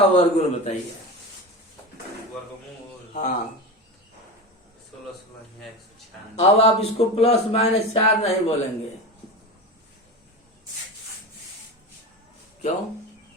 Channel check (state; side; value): normal; both; correlation 0.24